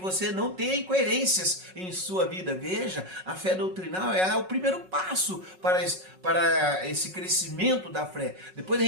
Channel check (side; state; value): left; late; 5.4 ms